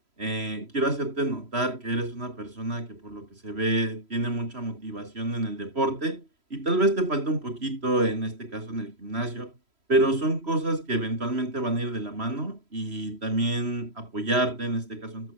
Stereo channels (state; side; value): late; left; 3.0 ms